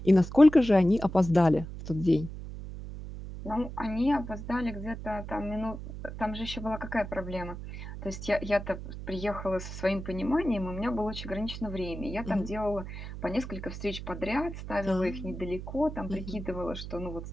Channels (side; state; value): right; noise; hum, 9 dB below the sound